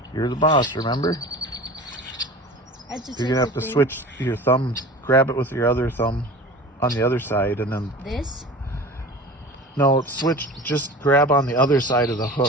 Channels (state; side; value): normal; both; correlation 0.38